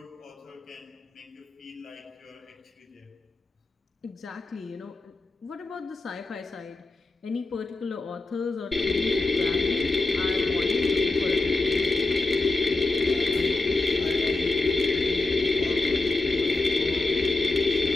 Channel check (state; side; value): quieter; right; 3.3 dB